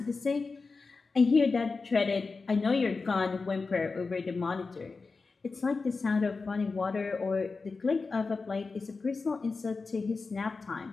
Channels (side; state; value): right; quieter; 4.2 dB